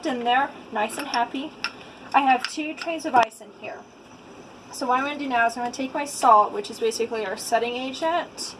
in there, nice and happy. I have 2 trays of ice in here. So what I'm going to do now is I'm going to take my salt, which is basically our setting agent,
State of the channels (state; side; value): identical; both; correlation 1.00